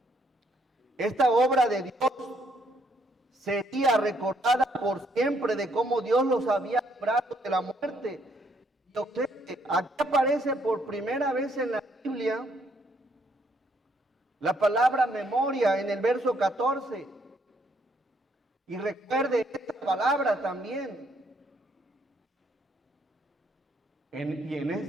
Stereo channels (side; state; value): both; normal; correlation 0.70